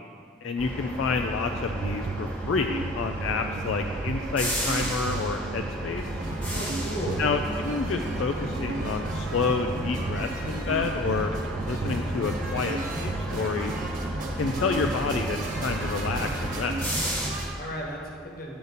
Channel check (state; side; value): normal; both; correlation 0.43